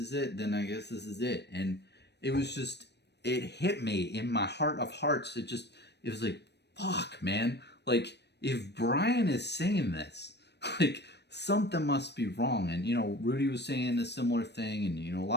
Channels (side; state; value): right; late; 0.49 ms